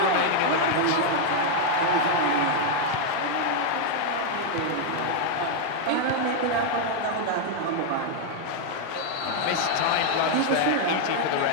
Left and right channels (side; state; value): both; different; correlation 0.00